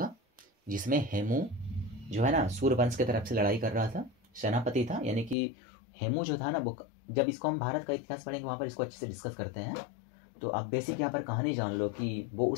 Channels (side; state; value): right; drops out; at 5.4 s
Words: जिसमें हेमू जो है ना सूर्यवंश की तरफ से लड़ाई कर रहा था, सेनापति था, यानी कि हेमू जो था ना, वो जब इसको हम भारत का इतिहास पढ़ेंगे वहाँ पर इसको अच्छे से डिस्कस करते हैं। तो आप बेसिक यहाँ पर कहानी जान लो कि वो